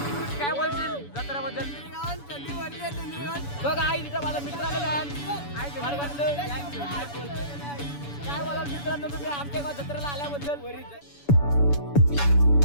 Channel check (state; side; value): late; right; 7.0 ms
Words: काय बोलशील जत्रेबद्दल? बघा आई तिथं माझा मित्र आलेला आहे. काय बोलाल मित्रांनो तुम्ही आमच्या गाव जत्रेला आल्याबद्दल?